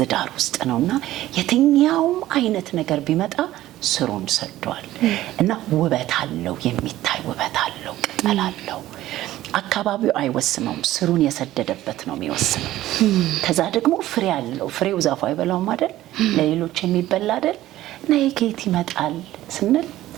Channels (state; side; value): quieter; left; 14.8 dB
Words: ዳር ውስጥ ነውና የትኛውም አይነት ነገር ቢመጣ ስሩን ሰዷል እና ውበት አለው፣ የሚታይ ውበት አለው፣ ቅጠል አለው። አካባቢው አይወስነውም፣ ስሩን የሰደደበት ነው የሚወስነው። ከዛ ደግሞ ፍሬ አለው። ፍሬው ዛፉ አይበላውም አይደል? ለሌሎች የሚበላ አይደል? እና ከየት ይመጣል ስንል